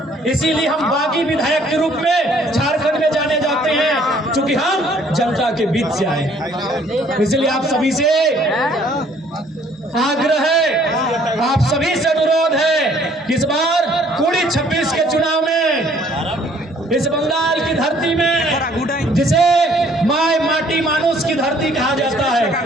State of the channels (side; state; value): both; normal; correlation 0.60